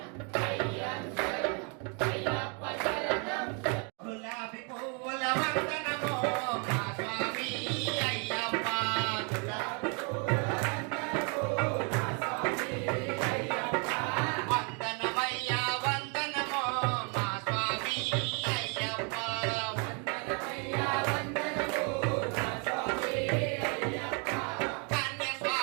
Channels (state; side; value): quieter; left; 36.2 dB